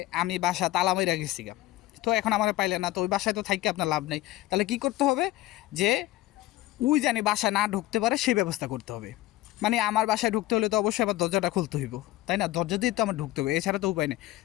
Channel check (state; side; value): quieter; right; 16.5 dB